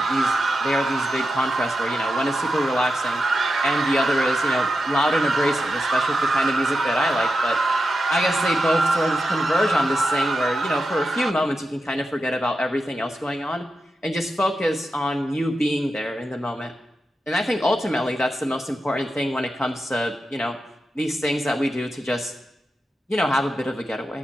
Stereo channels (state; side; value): normal; both; correlation 0.89